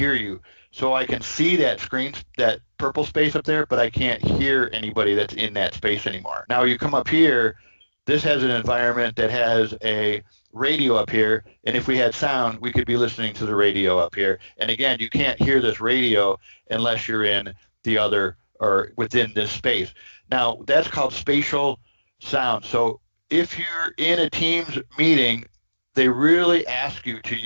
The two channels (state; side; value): inverted; both; correlation -1.00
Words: you. So I can see that screen, that purple space up there, but I can't hear anybody that's in that space anymore. Now you come up here, this has an environment that has a radio up here, and if we had sound, we could be listening to the radio up here. And again, you can't hear this radio unless you're in the other or within this space. Now, that's called spatial sound. So if you're in a Teams meeting, they really ask you to